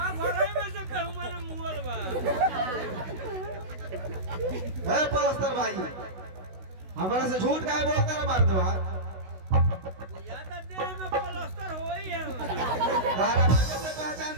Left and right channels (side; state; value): left; late; 16 ms